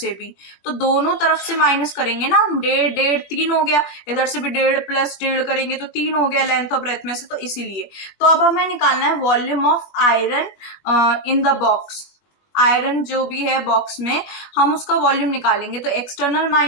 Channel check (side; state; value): right; late; 20 ms